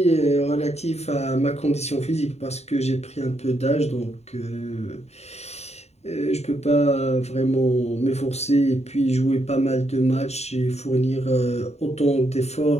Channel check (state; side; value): late; right; 0.31 ms